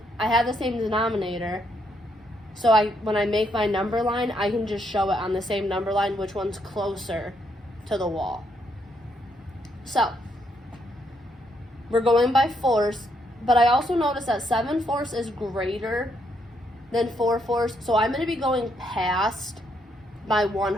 I have the same denominator, so when I make my number line, I can just show it on the same number line which one's closer to the wall. So, we're going by fourths, but I also noticed that 7/4 is greater than 4/4, so I'm going to be going past my 1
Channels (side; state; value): both; normal; correlation 0.75